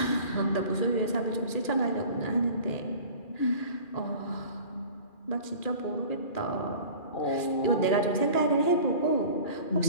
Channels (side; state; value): right; late; 2.4 ms